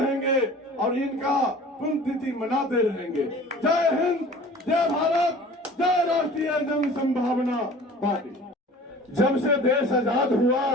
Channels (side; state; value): both; normal; correlation 0.44